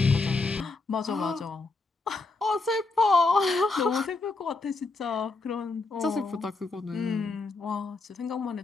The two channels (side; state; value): right; quieter; 3.6 dB